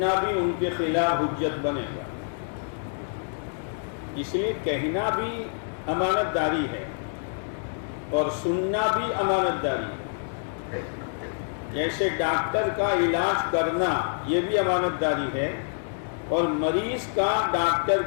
بھی ان کے خلاف حجت بنے گا. اس لیے کہنا بھی امانت داری ہے اور سننا بھی امانت داری ہے. جیسے ڈاکٹر کا علاج کرنا یہ بھی امانت داری ہے، اور مریض کا ڈاکٹر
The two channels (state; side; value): silent; right; digital silence